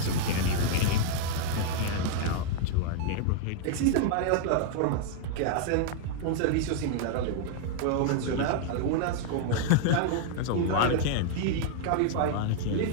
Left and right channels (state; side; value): different; both; correlation -0.01